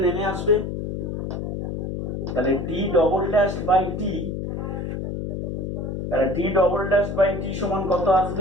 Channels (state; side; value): noise; left; hum, 4 dB below the sound